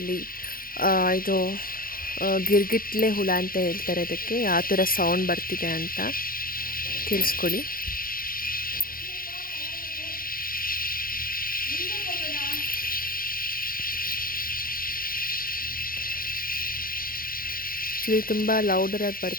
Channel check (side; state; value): right; late; 0.42 ms